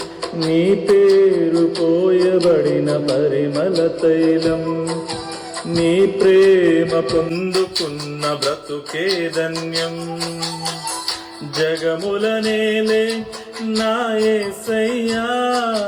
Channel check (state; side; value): identical; both; correlation 1.00